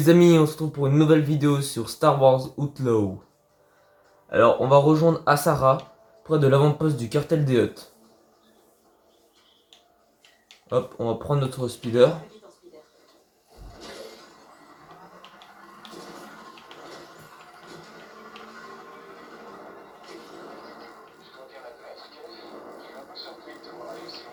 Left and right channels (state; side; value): identical; both; correlation 1.00